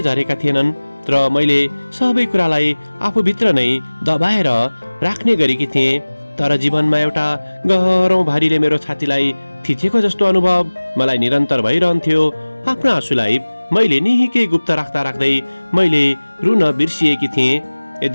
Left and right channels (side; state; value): both; inverted; correlation -1.00